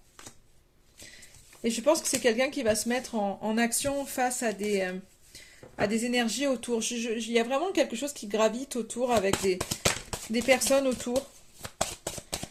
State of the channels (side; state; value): both; identical; correlation 1.00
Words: Et je pense que c'est quelqu'un qui va se mettre en action face à des énergies autour. Il y a vraiment quelque chose qui gravite autour avec des personnes autour.